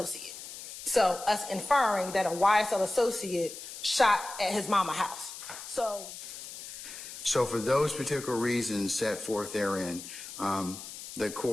So us inferring that a YSL associate shot at his mama's house. So for those particular reasons set forth therein, the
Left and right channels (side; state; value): left; noise; hiss, 12 dB below the sound